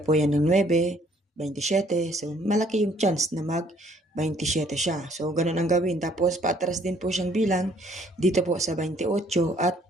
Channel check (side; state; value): both; normal; correlation 0.62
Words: yan ng 9, 27. So, malaki yung chance na mag 27 siya. So, ganun ang gawin. Tapos, patras din po siyang bilang dito po sa 28 at